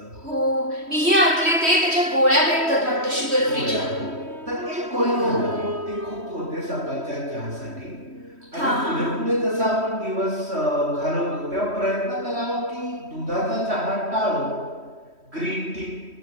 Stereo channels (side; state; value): left; late; 3.1 ms